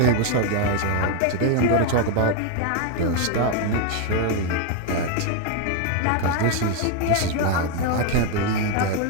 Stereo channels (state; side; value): different; both; correlation 0.01